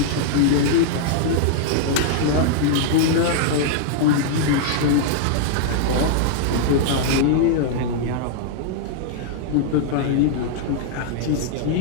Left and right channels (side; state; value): both; different; correlation -0.01